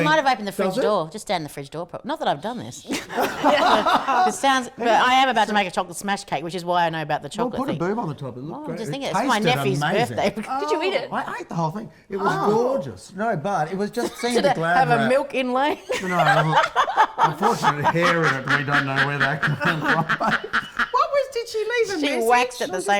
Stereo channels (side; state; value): both; identical; correlation 1.00